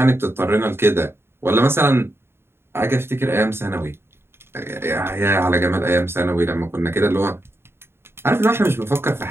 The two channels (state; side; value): late; left; 0.11 ms